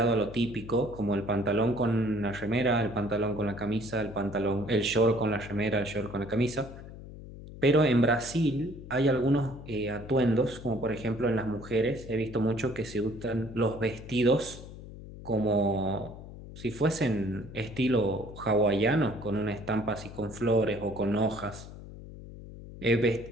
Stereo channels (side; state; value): left; noise; hum, 14 dB below the sound